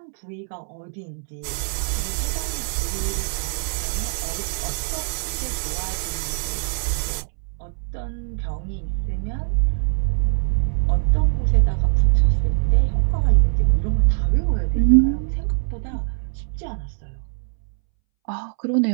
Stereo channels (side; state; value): left; silent; 64 dB below the other